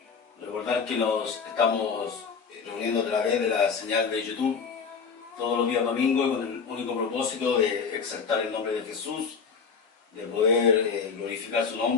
Recordar que nos estamos reuniendo a través de la señal de YouTube todos los días domingos con el único propósito de exaltar el nombre de Jesús, de poder glorificar su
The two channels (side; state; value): right; quieter; 5.8 dB